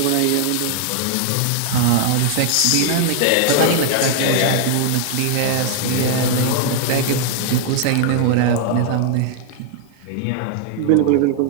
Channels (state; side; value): different; both; correlation 0.00